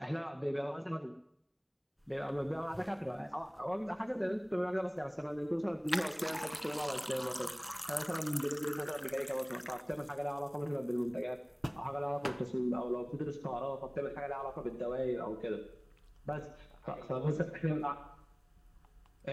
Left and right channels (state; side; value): identical; both; correlation 1.00